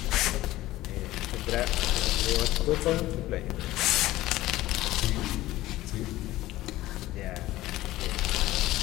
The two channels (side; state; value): right; quieter; 16.5 dB